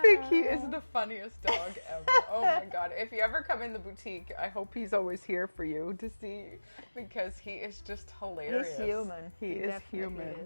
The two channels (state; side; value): inverted; both; correlation -1.00